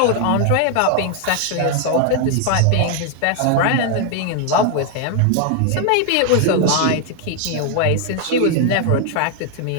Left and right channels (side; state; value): both; different; correlation 0.00